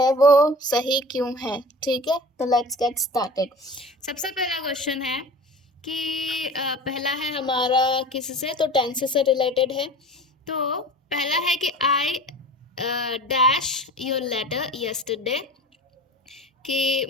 वो सही क्यों है। ठीक है, तो लेट्स गेट स्टार्टेड। सबसे पहला क्वेश्चन है कि पहला है हमारा किससे, तो टेंस से रिलेटेड है। तो पहला है कि I dash your letter yesterday, कि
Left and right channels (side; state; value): both; normal; correlation 0.38